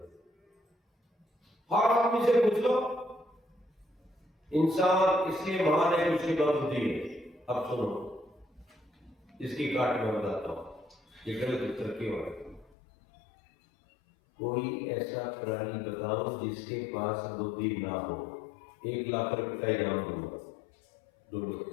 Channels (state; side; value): drops out; right; at 12.8 s